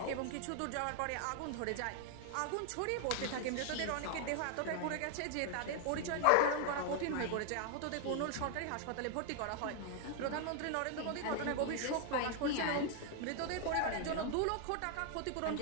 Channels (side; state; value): both; different; correlation 0.00